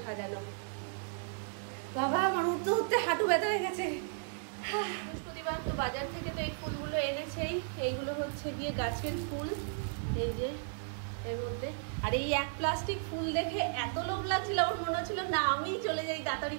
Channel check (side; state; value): left; silent; 55 dB below the other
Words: সাজানো। বাবা আমার উঠতে উঠতে হাঁটু ব্যথা হয়ে গেছে। বৃহস্পতিবার তো বাজার থেকে তো এই ফুলগুলো এনেছেই, এইগুলো হচ্ছে গিয়ে গাছের ফুল, এই যে এর মধ্যে। আর এই এক প্লাস্টিক ফুল দেখে এত লোভ লাগছিল, আমার মনে হচ্ছিল না আমি চলে যাই তাড়াতাড়ি